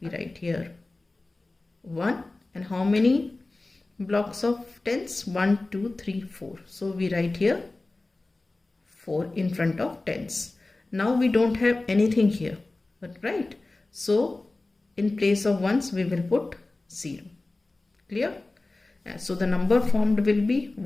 write here 1. And how many blocks of tens? 1, 2, 3, 4. So we write here 4 in front of tens. Now we don't have anything here, right? So in place of ones we will put 0. Clear? So the number formed will be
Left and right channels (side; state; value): right; quieter; 3.1 dB